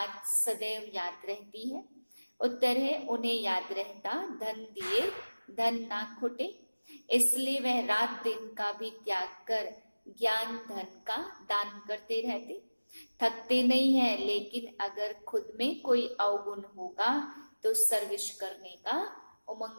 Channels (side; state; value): both; inverted; correlation -1.00